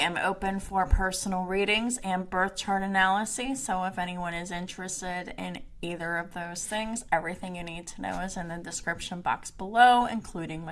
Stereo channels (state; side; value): identical; both; correlation 1.00